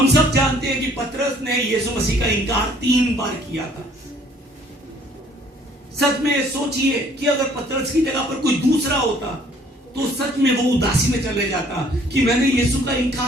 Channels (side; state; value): both; normal; correlation 0.59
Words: सब जानते हैं कि पतरस ने यीशु मसीह का इनकार 3 बार किया था। सच में सोचिए कि अगर पतरस की जगह पर कोई दूसरा होता तो सच में वो उदासी में चले जाता कि मैंने यीशु का